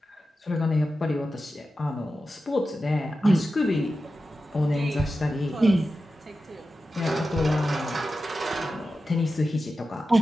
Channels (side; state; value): both; normal; correlation 0.92